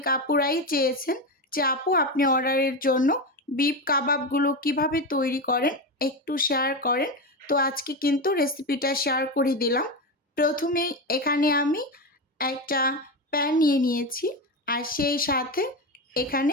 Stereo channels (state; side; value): normal; both; correlation 0.17